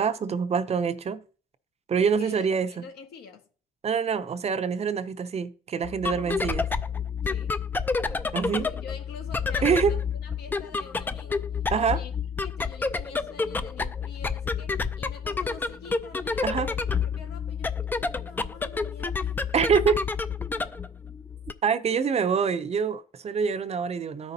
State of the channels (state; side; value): normal; both; correlation 0.52